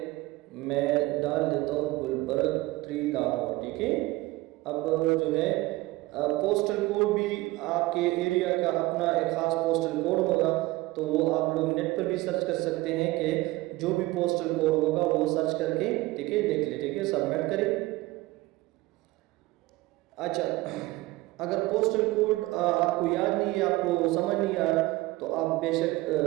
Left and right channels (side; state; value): left; quieter; 19.6 dB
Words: मैं डाल देता हूँ गुलबर्ग 3 लाहौर। ठीक है, अब जो है पोस्टल कोड भी आपके एरिया का अपना एक ख़ास पोस्टल कोड होगा, तो वो आप लोग नेट पर भी सर्च कर सकते हैं कि जो भी पोस्टल कोड होगा वो सर्च करके ठीक है लिख ले। ठीक है, सबमिट करें। अच्छा, अगर पोस्टल कोड आपको याद नहीं है, आपको समझ नहीं आ रहा, तो आप